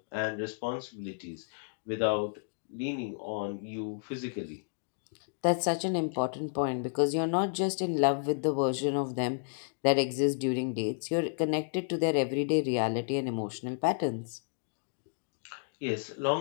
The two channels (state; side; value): silent; right; digital silence